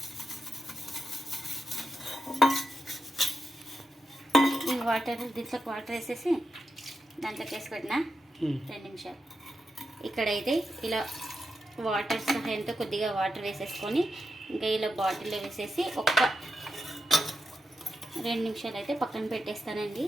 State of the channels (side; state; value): both; normal; correlation 0.87